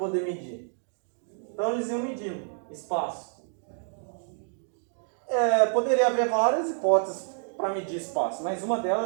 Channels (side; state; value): left; silent; digital silence